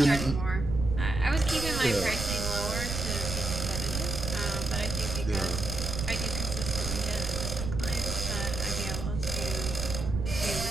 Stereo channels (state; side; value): noise; right; rumble, 4 dB below the sound